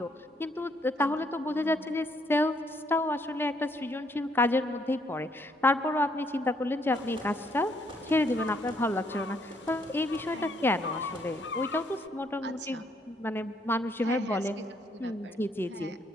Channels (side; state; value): both; normal; correlation 0.70